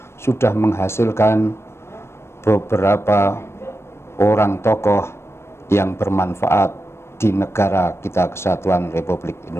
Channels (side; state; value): right; late; 0.12 ms